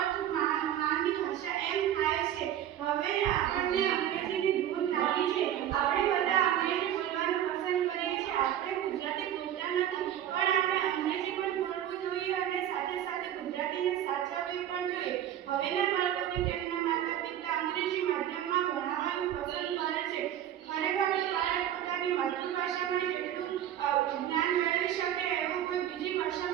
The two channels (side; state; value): left; quieter; 11.1 dB